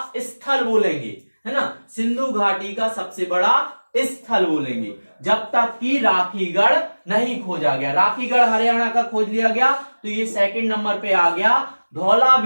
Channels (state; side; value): inverted; both; correlation -1.00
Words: स्थल बोलेंगे, है ना। सिंधु घाटी का सबसे बड़ा स्थल बोलेंगे, जब तक कि राखीगढ़ नहीं खोजा गया। राखीगढ़ हरियाणा का खोज लिया गया तो ये सेकंड नंबर पे आ गया।